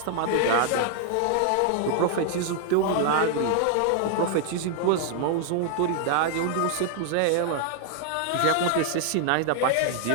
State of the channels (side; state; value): both; different; correlation 0.00